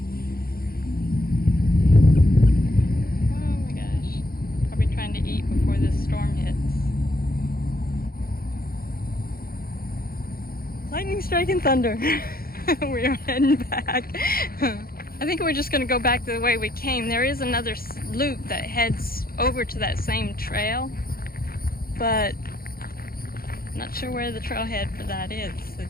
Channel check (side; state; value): right; late; 0.43 ms